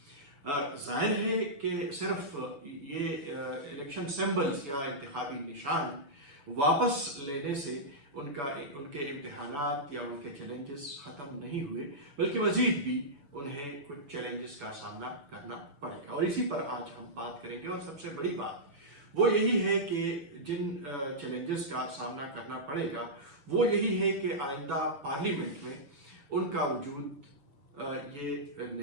ظاہر ہے کہ صرف یہ الیکشن سمبلز یا انتخابی نشان واپس لینے سے ان کے امتحانات یا ان کے چیلنجز ختم نہیں ہوئے، بلکہ مزید بھی انہیں کچھ چیلنجز کا سامنا کرنا پڑے گا، اور اسی پر آج ہم بات کریں گے۔ اور سب سے بڑی بات وہ یہی ہے کہ جن چیلنجز کا سامنا کرنا پڑے گا وہ یہی ہے کہ آئندہ پارلیمنٹ میں ان کا وجود یہ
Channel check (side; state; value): left; late; 7.0 ms